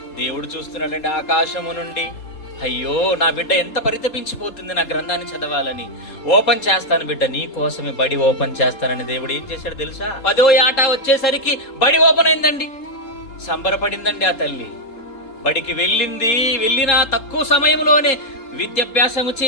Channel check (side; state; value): right; late; 3.8 ms